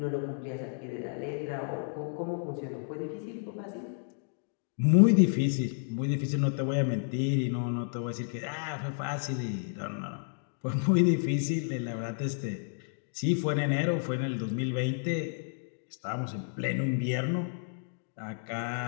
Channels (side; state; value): right; silent; digital silence